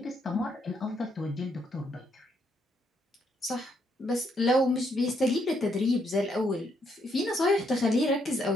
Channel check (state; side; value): normal; both; correlation 0.75